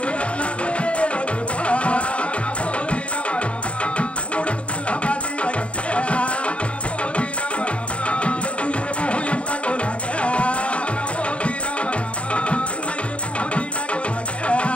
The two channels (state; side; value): late; right; 0.062 ms